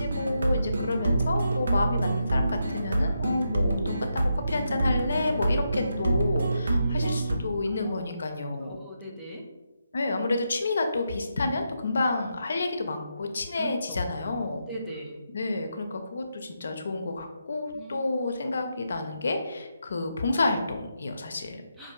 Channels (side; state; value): both; inverted; correlation -0.83